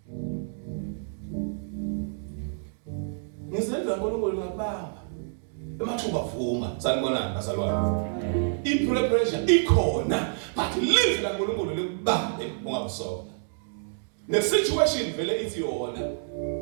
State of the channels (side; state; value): left; silent; digital silence